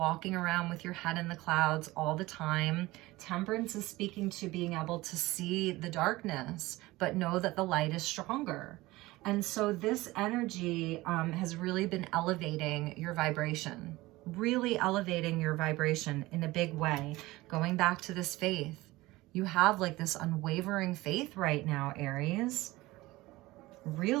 around with your head in the clouds all the time. Temperance is speaking to being able to see the darkness, but know that the light is stronger. And so this energy has really been elevating your vibration, really elevating your vibration in a big way. Going back to this faith, you have like this unwavering faith right now, Aries.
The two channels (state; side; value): quieter; left; 19.5 dB